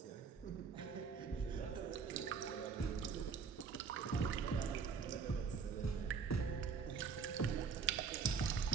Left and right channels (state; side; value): quieter; left; 5.8 dB